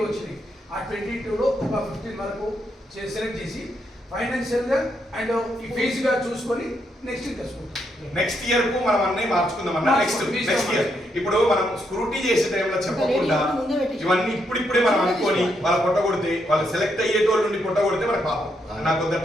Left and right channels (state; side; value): normal; both; correlation 0.78